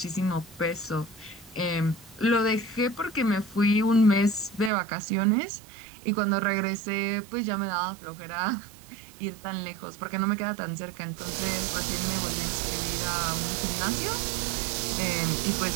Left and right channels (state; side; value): drops out; left; at 4.7 s